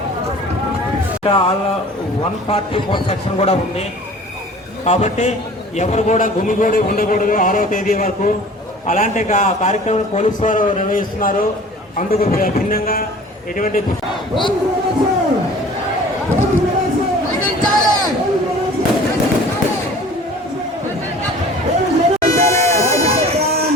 All 144 section కూడా ఉంది కాబట్టి ఎవరు కూడా గుమిగూడి ఉండకూడదు 6వ తేదీ వరకు. అలాంటి కార్యక్రమం పోలీసు వారు నిర్వహిస్తున్నారు. అందుకు భిన్నంగా ఎటువంటి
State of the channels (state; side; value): normal; both; correlation 0.46